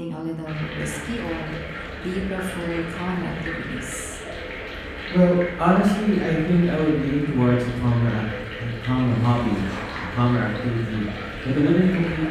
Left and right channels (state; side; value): identical; both; correlation 1.00